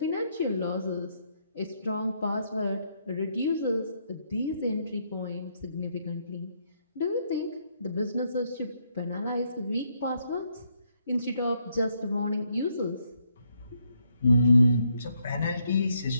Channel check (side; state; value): both; inverted; correlation -0.75